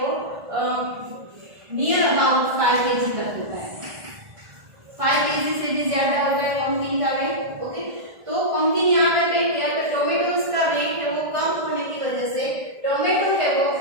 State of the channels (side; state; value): left; late; 1.5 ms